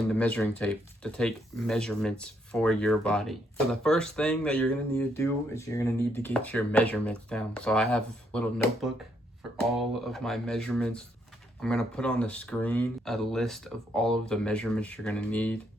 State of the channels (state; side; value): normal; both; correlation 0.74